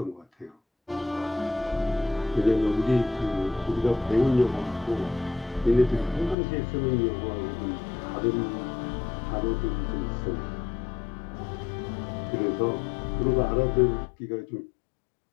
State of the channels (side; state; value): right; drops out; at 6.4 s